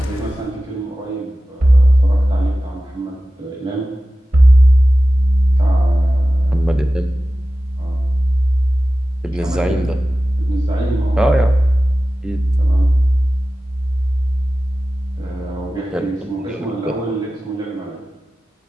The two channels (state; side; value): normal; both; correlation 0.95